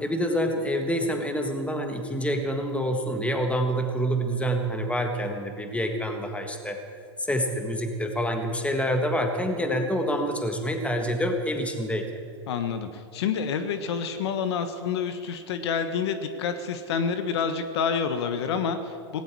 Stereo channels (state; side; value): normal; both; correlation 0.35